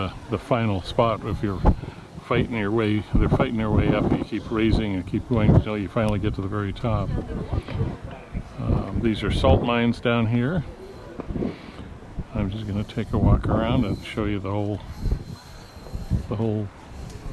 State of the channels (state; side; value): identical; both; correlation 1.00